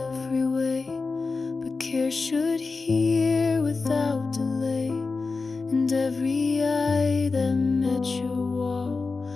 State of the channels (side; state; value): right; quieter; 4.1 dB